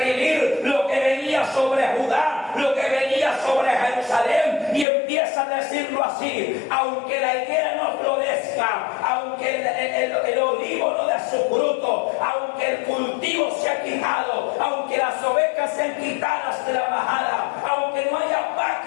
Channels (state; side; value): drops out; right; at 4.9 s